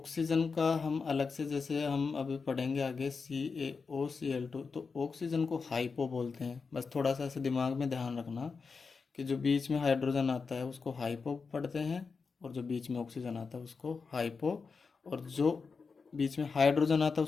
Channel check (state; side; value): quieter; right; 4.9 dB